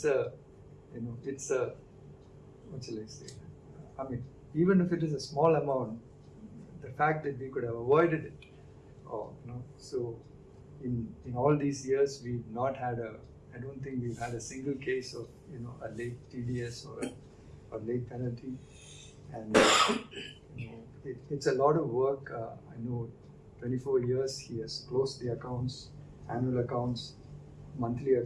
a, what shall I say? Even if it is a small amount, the fact that we could have avoided it, so in all these years, we've not had I don't think we've had a single case of, a late TDS or late penalty. And, it's a lot of work. I know 24 years he has closed the accounts, annual accounts, monthly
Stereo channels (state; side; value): identical; both; correlation 1.00